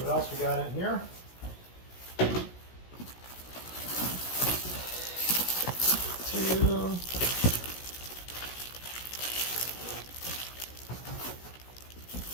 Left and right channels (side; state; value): right; late; 16 ms